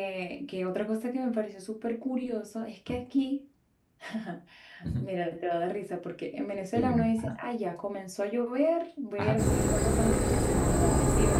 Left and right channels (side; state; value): both; identical; correlation 1.00